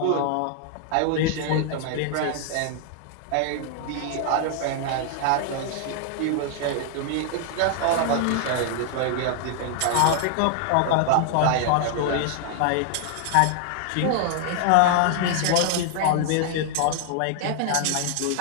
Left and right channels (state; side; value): different; both; correlation 0.00